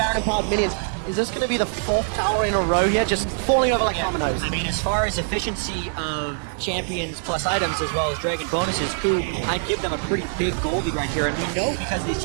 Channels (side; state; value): left; silent; digital silence